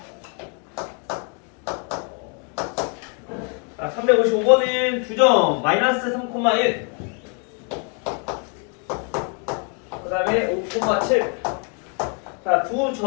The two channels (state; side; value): quieter; right; 38.8 dB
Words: 자, 355번은 두 점 마이너스 3,1 그 다음에 5,7 자, 두